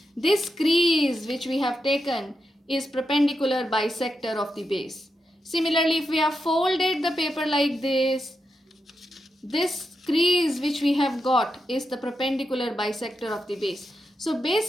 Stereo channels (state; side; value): normal; both; correlation 0.86